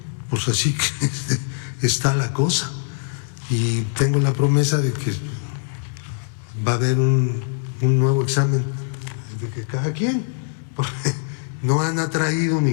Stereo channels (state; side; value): silent; right; 63 dB below the other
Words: pues así que está la cosa. Y tengo la promesa de que va a haber un nuevo examen de que cada quien, porque no han atraído